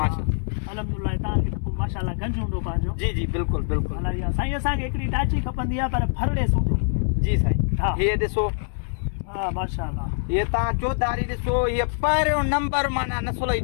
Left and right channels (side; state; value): right; silent; 62 dB below the other